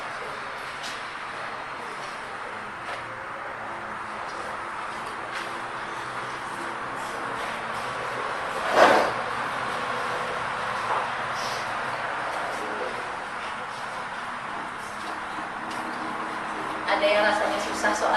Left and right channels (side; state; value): both; identical; correlation 1.00